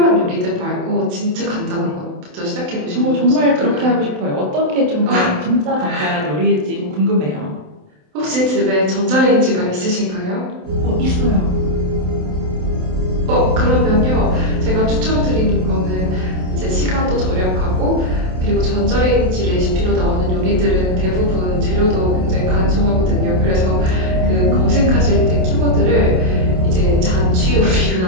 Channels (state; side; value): late; left; 27 ms